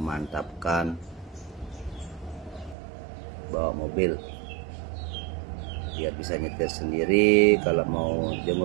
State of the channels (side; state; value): left; drops out; at 2.8 s